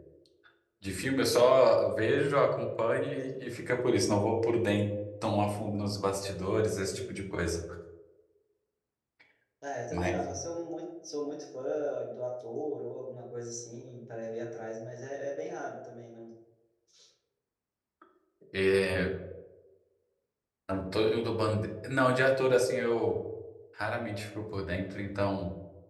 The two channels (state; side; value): identical; both; correlation 1.00